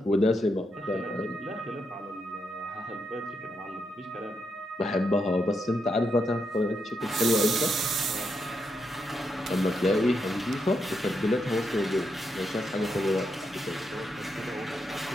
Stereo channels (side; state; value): both; normal; correlation 0.82